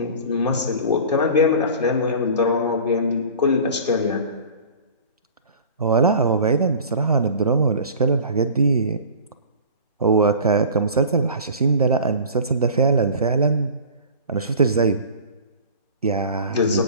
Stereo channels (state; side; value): inverted; both; correlation -0.40